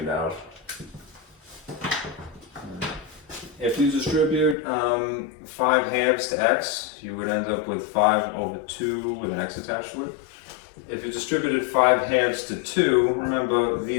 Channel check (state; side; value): drops out; right; at 4.5 s